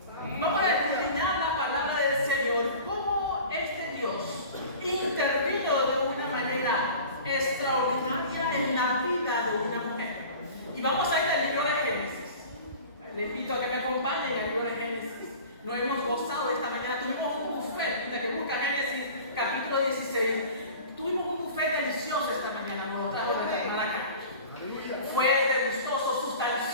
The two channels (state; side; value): inverted; both; correlation -0.40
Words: Vamos a escudriñar la palabra del Señor, cómo este Dios intervino de una manera extraordinaria en la vida de una mujer. Y vamos a ir al libro de Génesis. Le invito a que me acompañen al libro de Génesis. Lo hemos gozado esta mañana. Tuvimos un buffet, desde que busca Génesis capítulo 16. Tuvimos un buffet delicioso esta mañana. Nos trajo de la hermana acá. Fue delicioso,